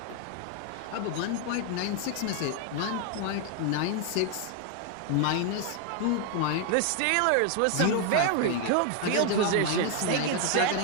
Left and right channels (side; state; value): both; different; correlation 0.00